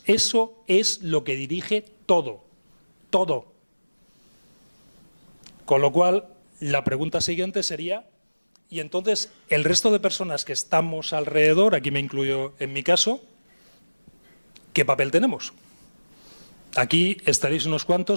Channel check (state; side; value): inverted; both; correlation -1.00